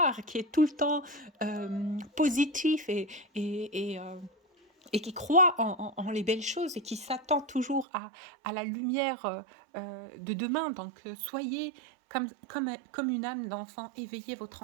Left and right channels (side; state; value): left; drops out; at 7.9 s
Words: qui est tout le temps positif et qui croit en les belles choses et qui s'attend toujours à la lumière de demain. Donc soyez comme une âme d'enfant, éveillez votre